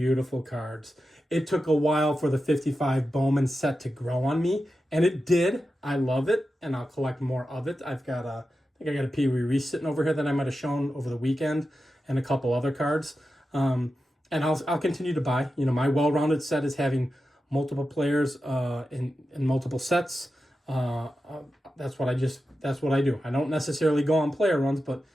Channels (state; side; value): normal; both; correlation 0.91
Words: cards. It took a while for the 55 Bowman set to grow on me, and it did. I love it, and I'll collect more of it. I think I got a Pee Wee Reese sitting over here that I might have shown over the weekend, and a couple other cards. And I'll continue to buy. My well-rounded set is having multiple players in multiple sets. That's what I do. I don't necessarily go on player runs, but